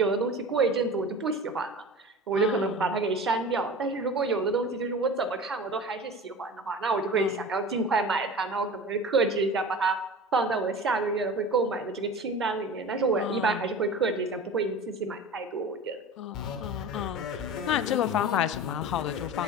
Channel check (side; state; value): both; normal; correlation 0.35